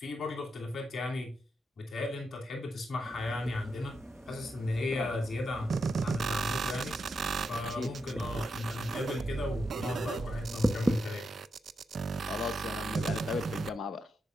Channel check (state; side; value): normal; both; correlation 0.84